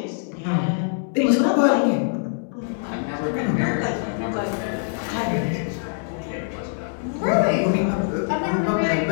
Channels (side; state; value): right; silent; 63 dB below the other